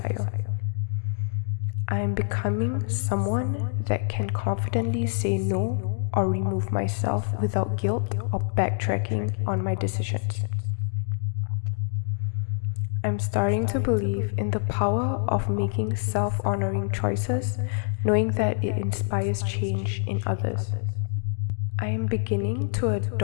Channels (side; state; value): right; silent; digital silence